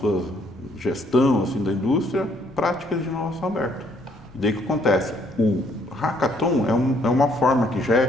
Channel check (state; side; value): noise; left; rumble, 25 dB below the sound